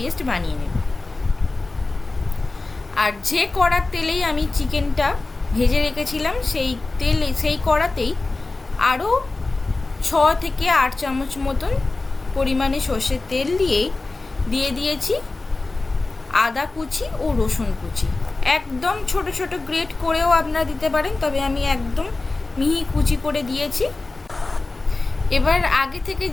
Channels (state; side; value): quieter; right; 3.4 dB